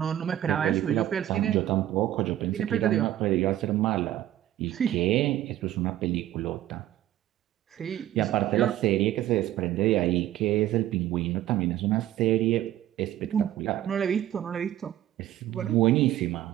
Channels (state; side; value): quieter; left; 13.1 dB